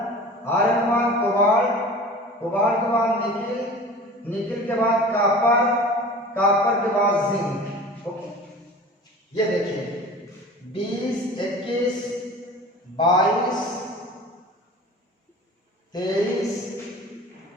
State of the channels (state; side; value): normal; both; correlation 0.39